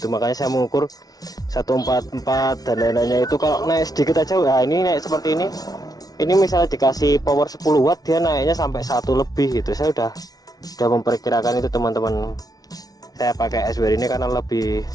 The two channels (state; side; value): late; right; 0.18 ms